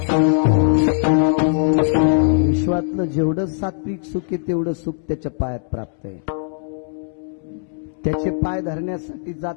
काय सांगू विश्वातलं जेवढं सात्विक सुख आहे तेवढं सुख त्याच्या पायात प्राप्त आहे. त्याचे पाय धरण्यासाठी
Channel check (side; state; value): right; silent; 65 dB below the other